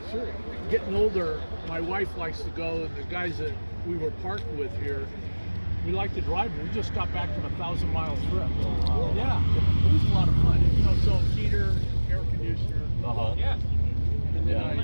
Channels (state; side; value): inverted; both; correlation -1.00